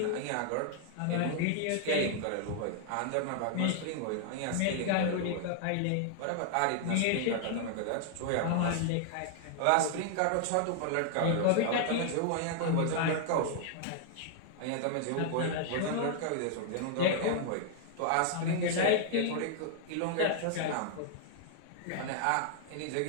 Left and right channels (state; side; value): different; both; correlation 0.00